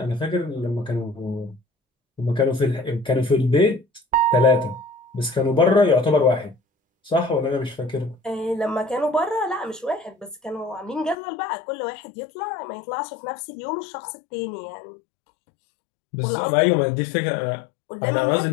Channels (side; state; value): right; drops out; at 11.2 s